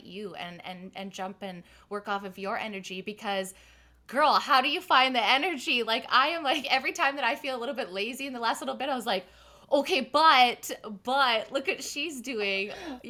you and jump and work off of your energy, because girl, how do you find the energy? Like, I am like, every time that I feel a little bit lazy in the last little bit, I was like, okay, but look what she's doing.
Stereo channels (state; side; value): identical; both; correlation 1.00